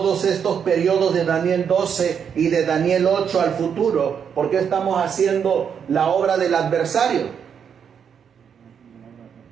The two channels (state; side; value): quieter; left; 7.5 dB